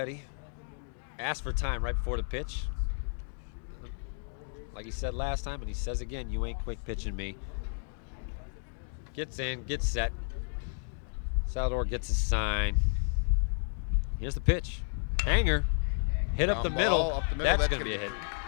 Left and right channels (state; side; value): silent; right; digital silence